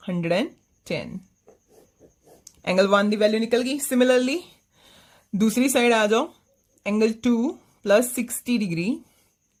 110 angle 1 की वैल्यू निकल गई सिमिलरली दूसरी साइड आ जाओ angle 2 plus 60 degree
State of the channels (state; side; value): identical; both; correlation 1.00